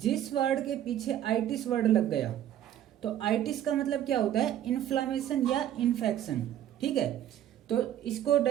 वर्ड के पीछे आइटिस वर्ड लग गया तो आइटिस का मतलब क्या होता है, इन्फ्लामेशन या इन्फेक्शन। ठीक है, तो इसको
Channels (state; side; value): quieter; left; 11.3 dB